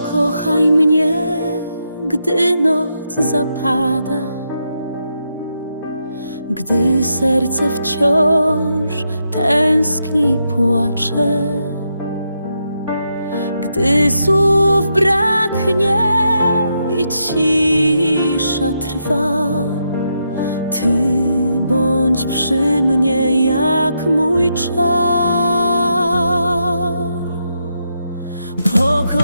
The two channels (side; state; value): both; inverted; correlation -0.82